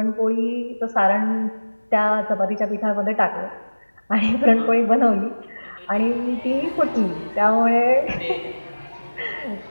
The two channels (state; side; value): inverted; both; correlation -1.00